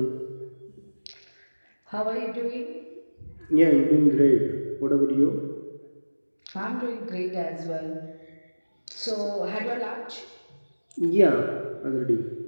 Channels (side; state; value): both; inverted; correlation -1.00